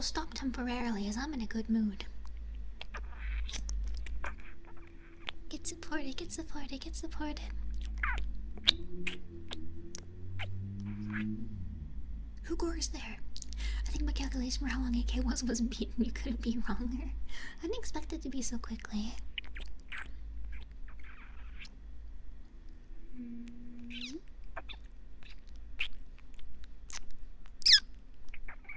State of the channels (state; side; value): identical; both; correlation 1.00